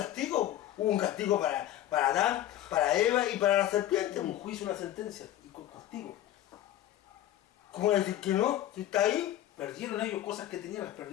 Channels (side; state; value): right; quieter; 12.8 dB